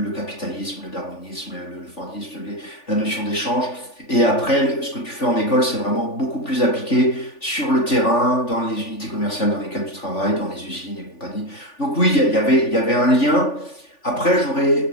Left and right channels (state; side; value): late; right; 3.5 ms